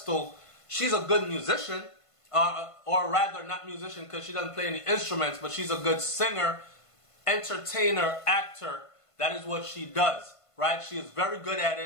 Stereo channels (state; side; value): late; right; 1.5 ms